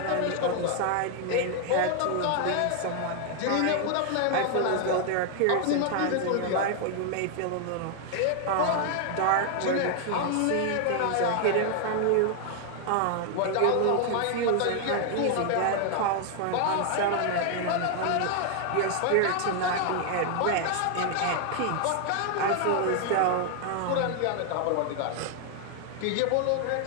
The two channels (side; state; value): both; different; correlation 0.00